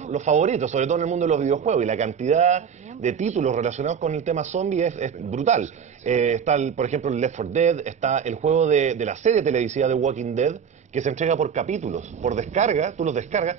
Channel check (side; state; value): left; quieter; 7.3 dB